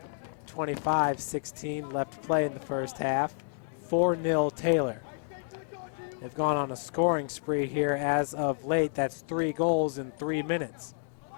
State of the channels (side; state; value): right; silent; 56 dB below the other